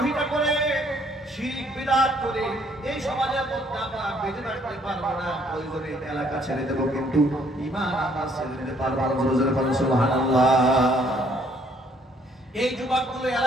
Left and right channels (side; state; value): both; normal; correlation 0.64